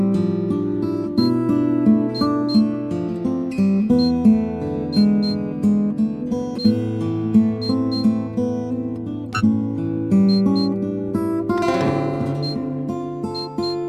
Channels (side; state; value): both; identical; correlation 1.00